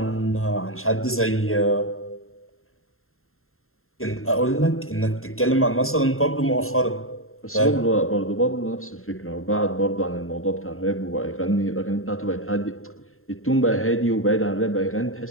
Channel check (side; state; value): right; late; 0.61 ms